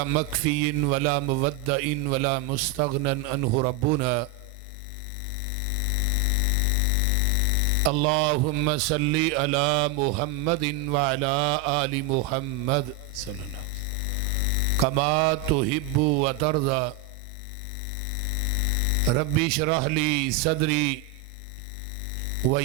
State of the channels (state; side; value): quieter; left; 4.8 dB